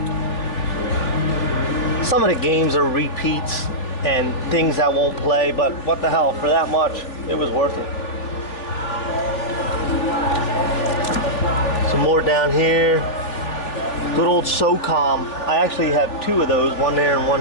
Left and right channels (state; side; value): late; right; 3.3 ms